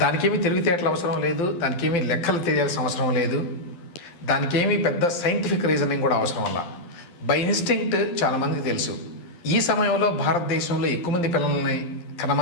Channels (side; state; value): right; late; 12 ms